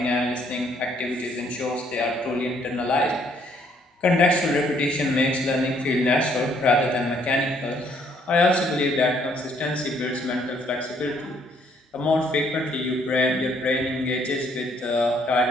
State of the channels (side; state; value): both; normal; correlation 0.66